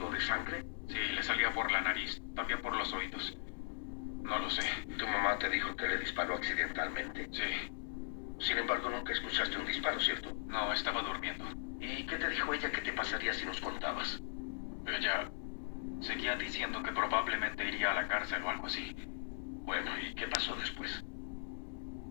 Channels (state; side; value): silent; right; digital silence